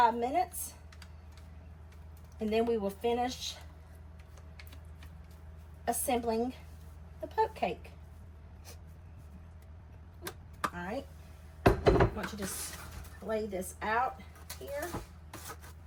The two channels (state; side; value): identical; both; correlation 1.00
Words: minutes. And then we will finish assembling the poke cake. All right, I want you to just lay this out here.